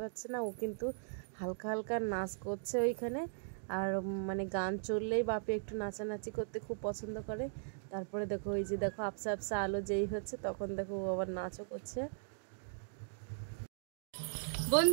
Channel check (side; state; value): left; silent; digital silence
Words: পারছে না, ও কিন্তু হালকা হালকা নাচ করছে ওইখানে। আর মানে গান চললেই বাপি একটু নাচানাচি করতে খুব পছন্দ করে। তারপরে দেখো ওই যে দেখো আবসা আবসা আলো যেই হচ্ছে তখন দেখো ও আবার নাচও করছে।